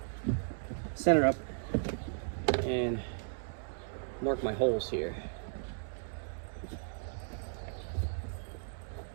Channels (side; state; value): left; silent; digital silence